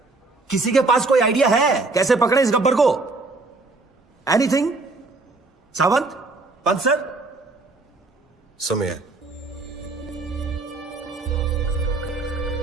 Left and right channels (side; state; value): left; quieter; 3.5 dB